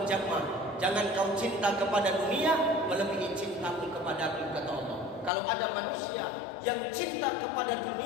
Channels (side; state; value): right; drops out; at 5.3 s